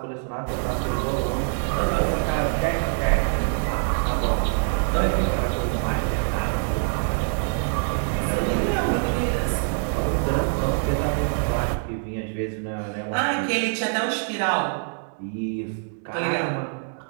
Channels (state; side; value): silent; left; 60 dB below the other